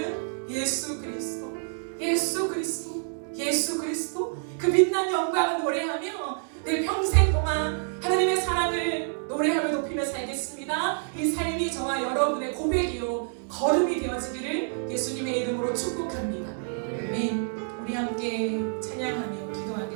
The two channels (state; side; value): silent; left; 60 dB below the other